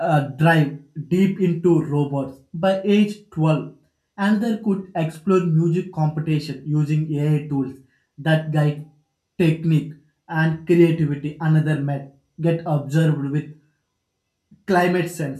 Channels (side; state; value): both; identical; correlation 1.00